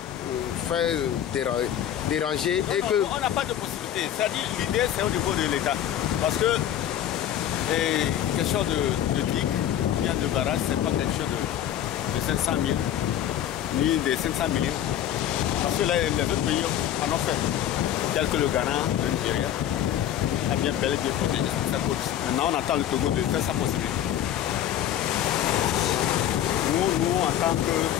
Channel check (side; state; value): right; quieter; 10.8 dB